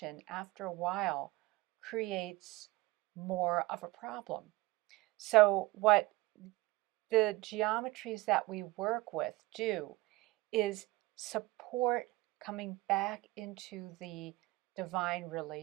after a while, creates more of a problem. So, what the geometries that we work with do is support coming back into the divine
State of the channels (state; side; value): quieter; left; 20.4 dB